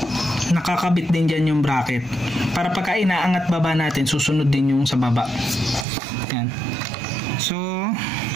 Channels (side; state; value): left; drops out; at 5.9 s